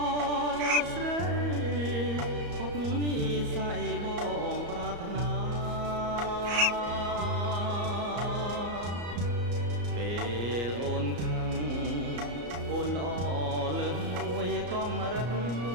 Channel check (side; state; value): left; late; 34 ms